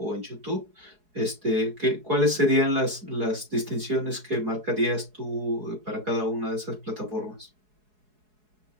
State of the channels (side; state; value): left; late; 4.7 ms